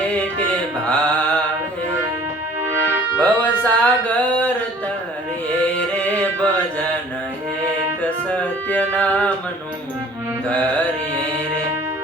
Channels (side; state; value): both; normal; correlation 0.52